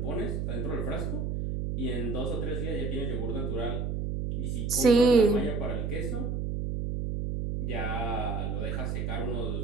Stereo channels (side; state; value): right; noise; hum, 1 dB below the sound